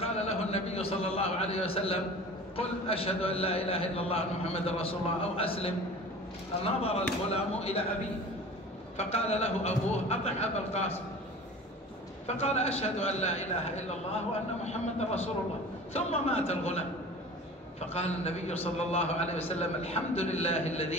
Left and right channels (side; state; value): both; normal; correlation 0.40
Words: له النبي صلى الله عليه وسلم قل أشهد أن لا إله إلا الله محمد رسول الله أو أسلم. نظر الغلام إلى أبيه فقال له أبوه أطع أبا القاسم، فقال أشهد أن لا إله إلا الله وأن محمد رسول الله، ثم مات الغلام. فقال النبي صلى الله عليه وسلم الحمد لله